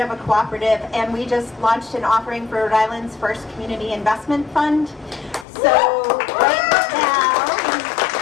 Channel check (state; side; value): drops out; right; at 5.5 s